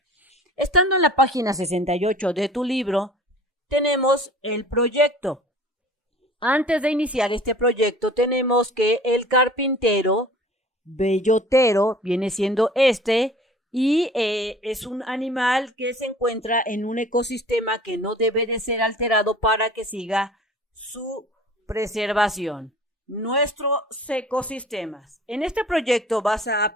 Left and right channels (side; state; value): both; normal; correlation 0.46